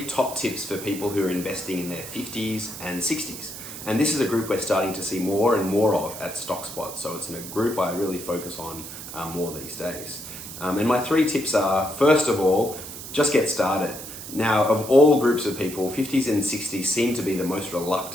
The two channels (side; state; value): right; noise; hiss, 11 dB below the sound